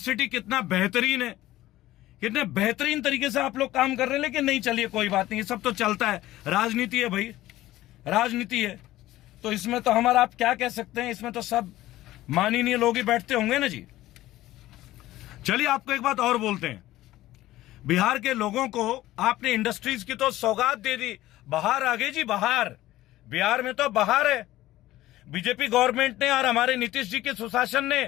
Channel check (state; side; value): quieter; right; 15.8 dB